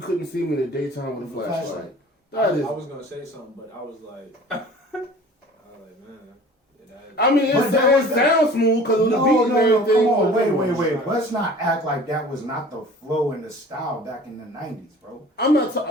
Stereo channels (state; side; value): normal; both; correlation 0.45